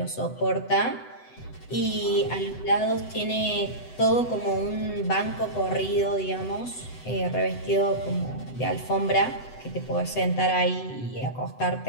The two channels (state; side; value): late; right; 8.0 ms